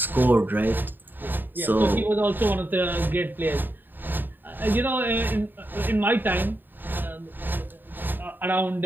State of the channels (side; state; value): left; late; 0.092 ms